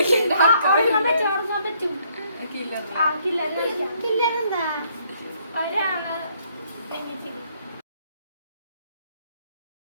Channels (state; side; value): inverted; both; correlation -0.68